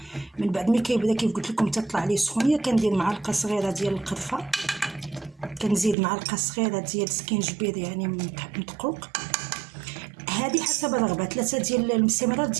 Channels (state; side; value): drops out; left; at 6.0 s